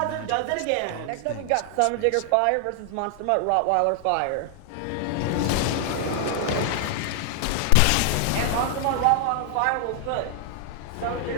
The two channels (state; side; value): different; both; correlation 0.00